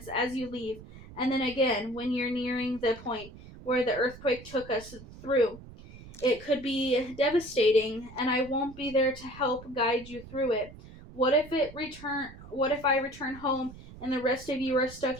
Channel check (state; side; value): noise; right; rumble, 17 dB below the sound